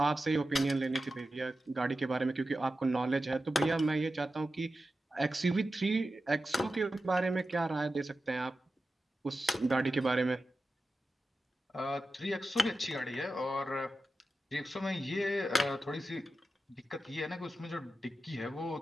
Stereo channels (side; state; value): both; normal; correlation 0.92